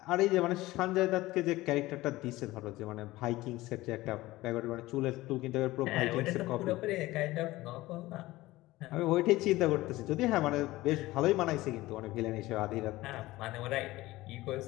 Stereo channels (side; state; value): right; quieter; 18.3 dB